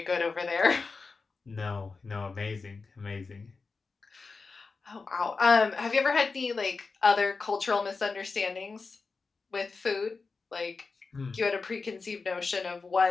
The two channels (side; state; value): right; quieter; 4.4 dB